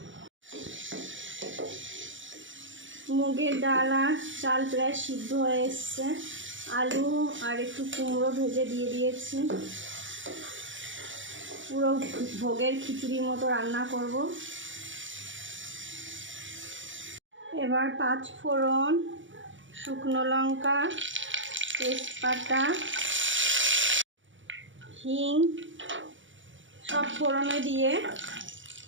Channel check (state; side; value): late; left; 0.56 ms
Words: মুগের ডাল আর চাল প্রায় সিদ্ধ হয়ে এসছে। আলু আর একটু কুমড়ো ভেজে দিয়ে দিয়েছি। পুরো ভোগের খিচুড়ির মতো রান্না করব। এবার 5 ফোড়ন, শুকনো লঙ্কা, তেজপাতা, হিং সব ফোড়নে দিয়ে